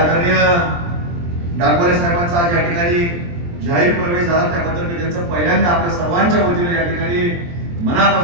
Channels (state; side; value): late; left; 23 ms